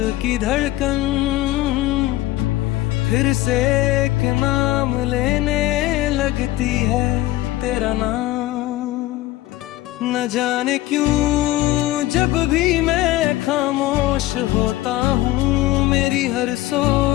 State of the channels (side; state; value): right; quieter; 16.4 dB